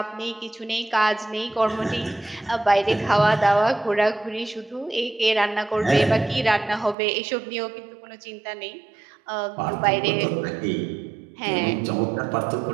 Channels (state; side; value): drops out; left; at 7.0 s